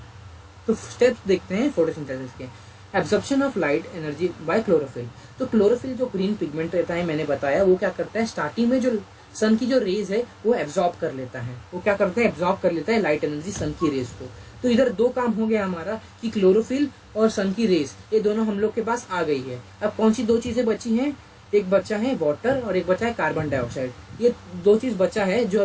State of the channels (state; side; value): identical; both; correlation 1.00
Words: तो स्टेप्स देखते हैं फोटोसिंथेसिस के। Absorption of light energy by chlorophyll. तो क्लोरोफिल जो ग्रीन पिगमेंट रहता है, मैंने बताया, वो क्या करता है, स्टार्टिंग में जो सन की जो रेज है वो एब्जॉर्ब कर लेता है। वो क्या करता है, एब्जॉर्ब कर लेता है लाइट एनर्जी सन की रेज को। तो इधर दो काम हो गया हमारा कि क्लोरोफिल और सन की रेज ये दोनों हम लोग के पास आ गई है। अब कौन सी दो चीजें बची हैं, एक बचा है वाटर और एक बचा है कार्बन डाइऑक्साइड। ये दो चीज बचा है जो